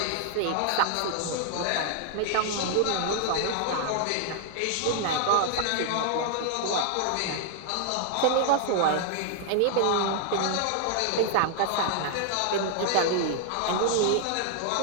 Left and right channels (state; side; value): different; both; correlation 0.00